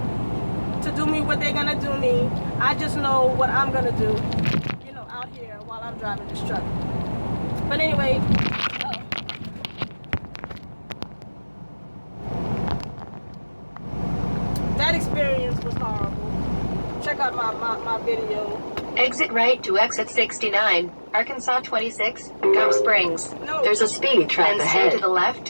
do me what they're gonna do me. I just know what I'm gonna do, you know, out here while I'm driving this truck. But anyway, that experience was horrible. Check out my video. Exit right to exit 69, Arkansas 26, Gum Springs. No. There's a speed trap ahead. Stay to the left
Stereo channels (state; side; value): inverted; both; correlation -1.00